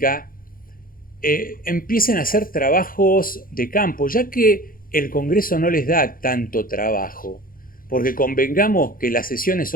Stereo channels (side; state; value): right; late; 0.41 ms